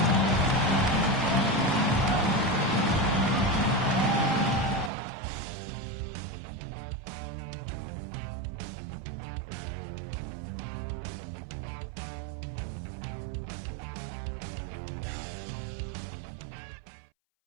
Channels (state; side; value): drops out; left; at 4.9 s